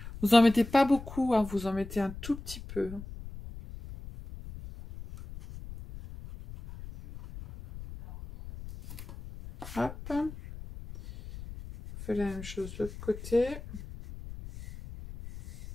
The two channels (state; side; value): noise; left; rumble, 13 dB below the sound